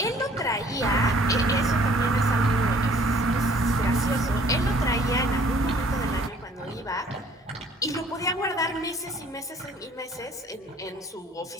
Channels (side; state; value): both; normal; correlation 0.57